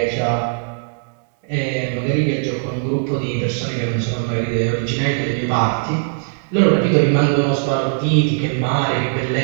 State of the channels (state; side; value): silent; left; digital silence